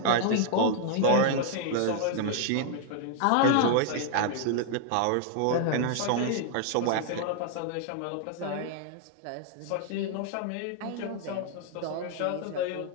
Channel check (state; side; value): different; both; correlation -0.01